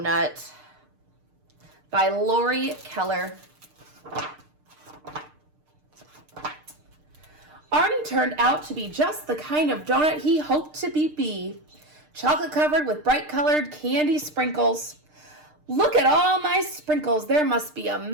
by Lori Keller. Arnie turned out to be just the kind of donut he hoped to be. Chocolate covered with bright colored candy sprinkles. Look at all my sprinkles. There must be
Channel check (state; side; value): late; left; 6.6 ms